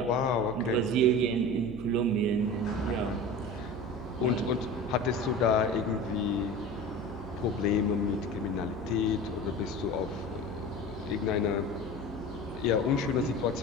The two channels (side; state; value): right; noise; hum, 14 dB below the sound